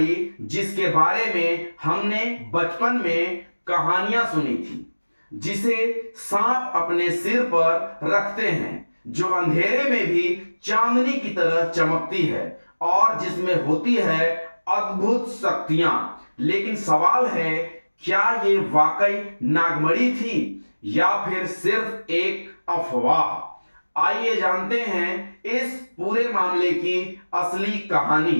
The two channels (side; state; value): both; inverted; correlation -1.00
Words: जिसके बारे में हमने बचपन में कहानियां सुनी थी, जिसे सांप अपने सिर पर रखते हैं, जो अंधेरे में भी चांदनी की तरह चमकती है और जिसमें होती है अद्भुत शक्तियां। लेकिन सवाल है, क्या ये वाकई नागमणि थी या फिर सिर्फ एक अफवाह? आइए जानते हैं इस पूरे मामले की असली कहानी।